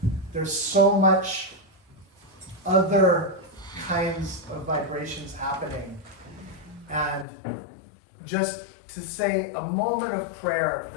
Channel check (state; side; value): drops out; right; at 7.2 s